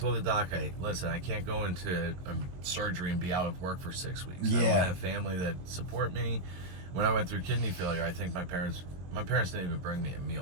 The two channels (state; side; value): late; left; 22 ms